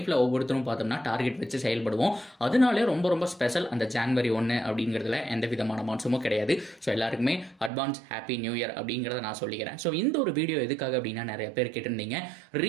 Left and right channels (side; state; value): left; drops out; at 7.7 s